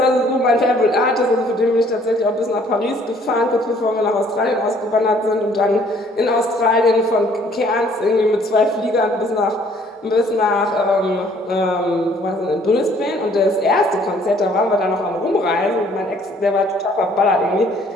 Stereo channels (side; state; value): both; normal; correlation 0.60